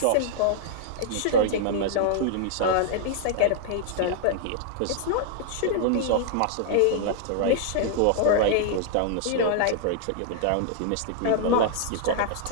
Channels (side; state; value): both; different; correlation -0.01